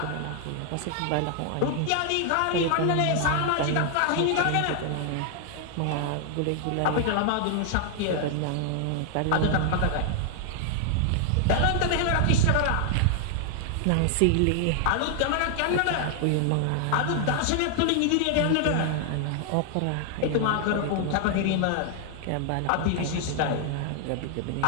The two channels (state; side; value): different; both; correlation 0.00